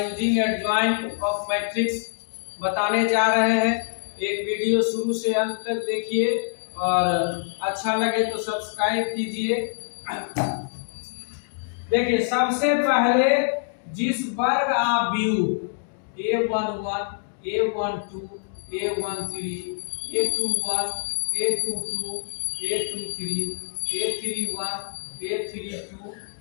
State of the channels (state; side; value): silent; right; digital silence